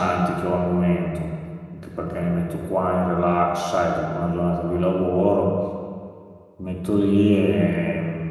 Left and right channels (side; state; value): both; identical; correlation 1.00